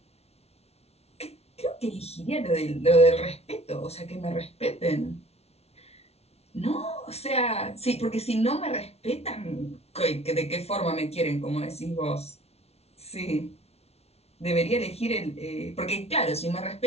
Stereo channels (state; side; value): late; right; 0.31 ms